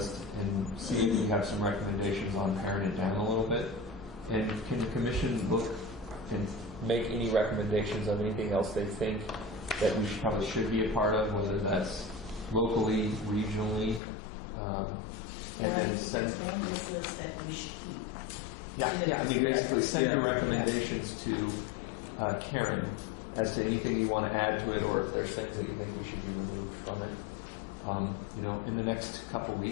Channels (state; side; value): drops out; right; at 14.0 s